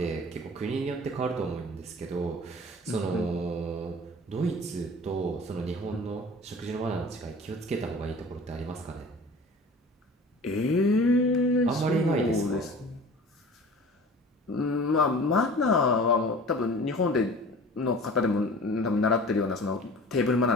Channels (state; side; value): normal; both; correlation 0.42